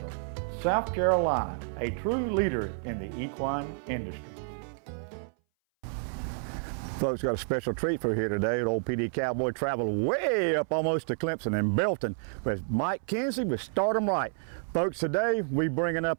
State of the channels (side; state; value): left; silent; 58 dB below the other